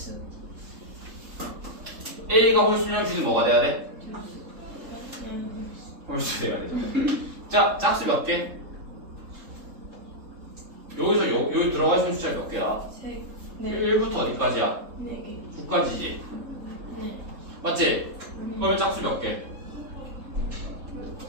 A가 홀수면 B도 뭐가 돼야 돼? 홀수 돼야 되죠. 자, 짝수 몇 개? 여기서 여기 들어가 있는 숫자 몇 개야? 1부터 어디까지야? 4개. 9까지지. 네. 맞지? 그러면 짝수 몇 개?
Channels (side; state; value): left; late; 3.7 ms